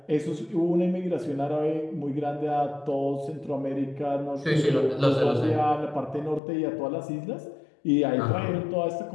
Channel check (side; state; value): right; drops out; at 6.4 s